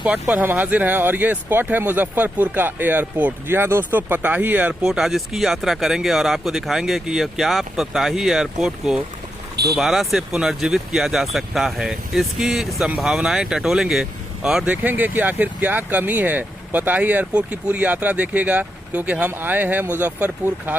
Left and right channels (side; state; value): both; normal; correlation 0.84